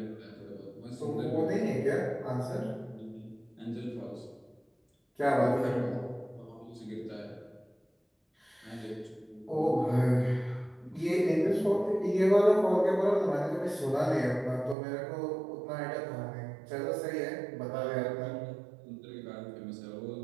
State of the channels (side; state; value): left; drops out; at 14.8 s